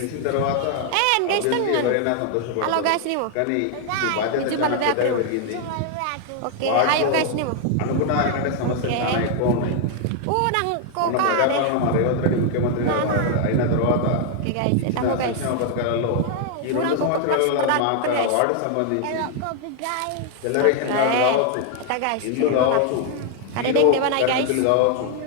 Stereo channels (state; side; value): different; both; correlation 0.00